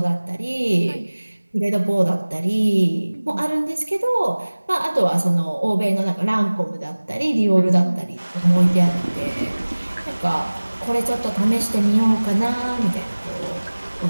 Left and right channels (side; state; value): both; inverted; correlation -1.00